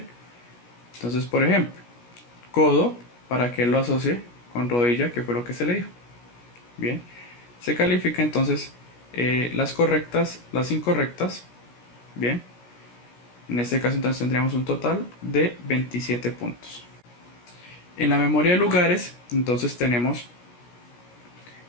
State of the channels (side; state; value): right; late; 17 ms